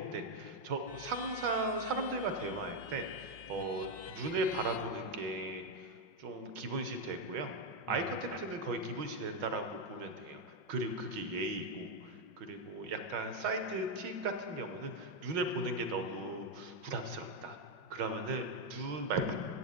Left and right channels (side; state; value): left; late; 5.5 ms